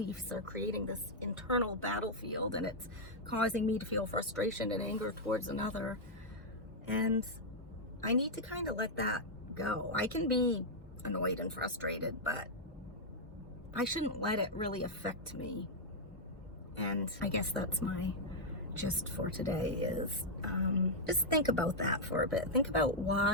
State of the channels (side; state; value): both; normal; correlation -0.04